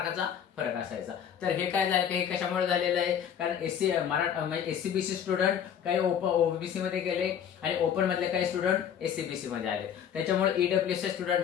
फरक असायचा। तर हे काय झालं, हे कशामुळे झालेलं आहे, कारण SC/BC स्टुडंट काही ओबीसी मध्ये गेले आणि ओपन मधले काही स्टुडंट SC/BC मध्ये आले, त्याच्यामुळे EWS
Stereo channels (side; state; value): right; quieter; 8.7 dB